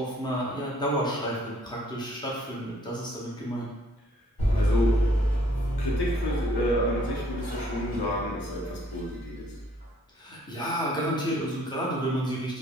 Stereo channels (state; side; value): normal; both; correlation 0.62